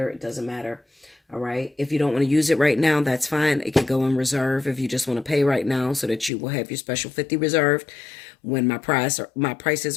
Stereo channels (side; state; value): right; drops out; at 6.3 s